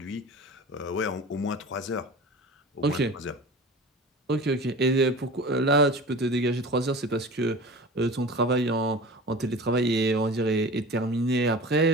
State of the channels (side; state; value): both; normal; correlation 0.36